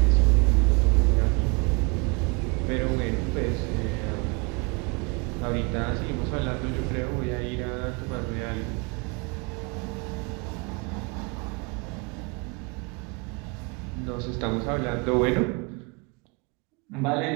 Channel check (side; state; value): left; quieter; 30.3 dB